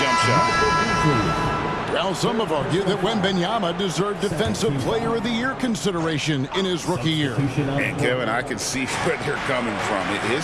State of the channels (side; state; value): both; identical; correlation 1.00